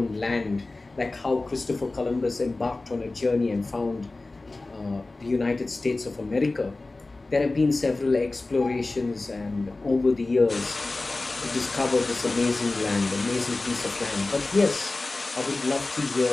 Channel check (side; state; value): right; quieter; 3.2 dB